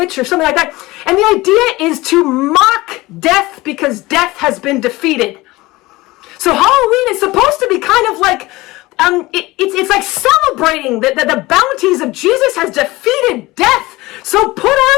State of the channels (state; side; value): quieter; right; 20.2 dB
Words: or something like that. And the idea is to mock death because death has been defeated. So Halloween is supposed to be kind of like, it's like celebrating that the bounties of Jesus has defeated death. So put